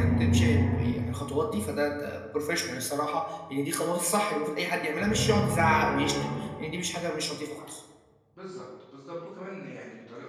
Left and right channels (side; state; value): both; identical; correlation 1.00